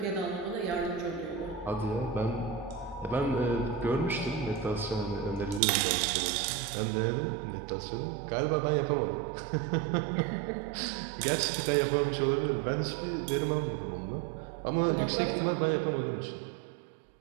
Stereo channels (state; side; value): drops out; left; at 5.6 s